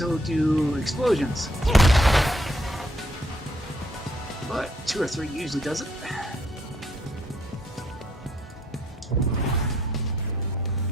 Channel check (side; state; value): both; normal; correlation 0.69